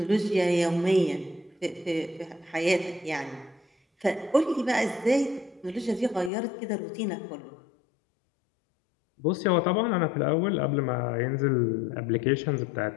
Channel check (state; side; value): drops out; right; at 6.3 s